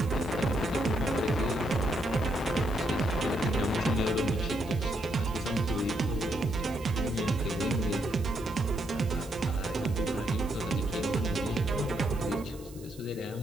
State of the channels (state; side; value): noise; right; hiss, 21 dB below the sound